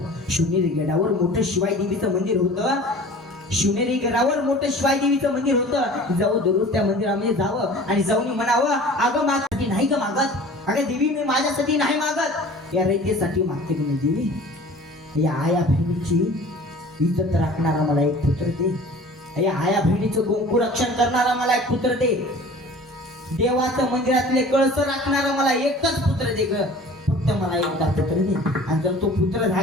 शिवनेरी गडावर मोठं शिवाई देवीचं मंदिर होतं. शिवनेरी गडावर मोठं शिवाई देवीचं मंदिर होतं. जाऊ दररोज त्या मंदिरामध्ये जावं आणि जाऊन म्हणावं, अगं माझ्यासाठी नाही ग मागत, अगं देवी मी माझ्यासाठी नाही मागत, या रयतेसाठी मागते की नाही देवी. या आया बहिणीची इज्जत राखणारा मला एक पुत्र दे. या आया बहिणीचं गोंकू रक्षण करणारा मला एक पुत्र दे. देवाचं मंदिरातले कळस राखणारा मला एकच पुत्र दे ग, फक्त मला एकदा पुत्र दे. आणि जर तो पुत्र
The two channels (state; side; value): normal; both; correlation 0.44